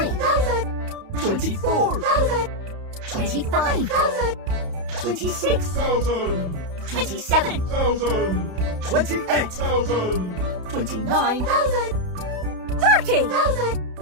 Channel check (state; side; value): late; left; 31 ms